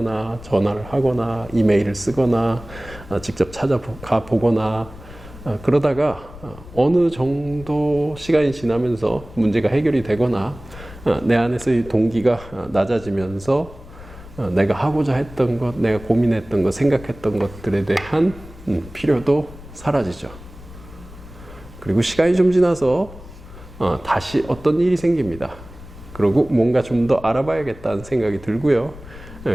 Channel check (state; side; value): noise; left; rumble, 17 dB below the sound